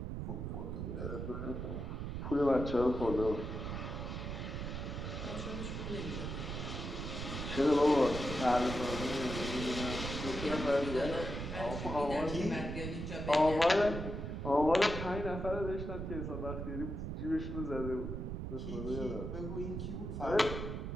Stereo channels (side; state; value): right; noise; rumble, 5 dB below the sound